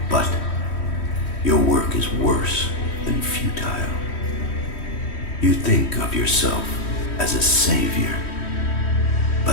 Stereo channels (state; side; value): late; right; 3.1 ms